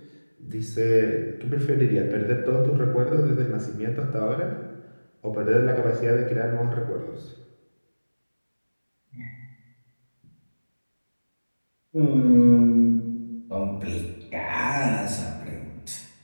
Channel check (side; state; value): both; inverted; correlation -1.00